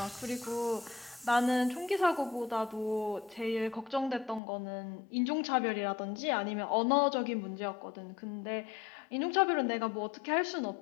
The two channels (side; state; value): right; drops out; at 4.4 s